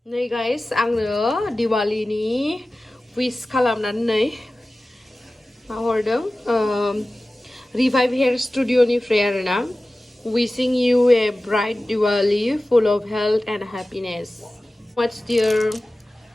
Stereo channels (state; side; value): normal; both; correlation 0.96